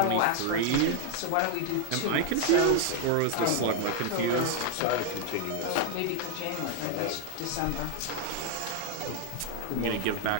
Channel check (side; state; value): both; different; correlation 0.00